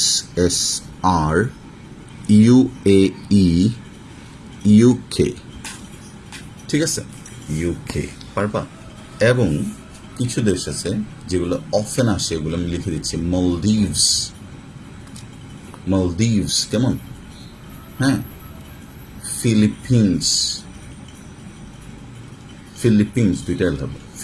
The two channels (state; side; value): identical; both; correlation 1.00